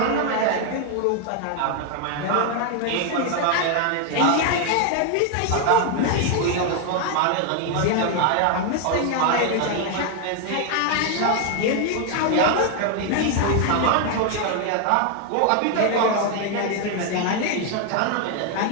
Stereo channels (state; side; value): different; both; correlation 0.01